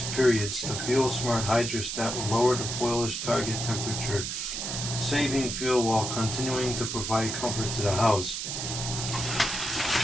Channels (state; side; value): noise; right; hiss, 4 dB below the sound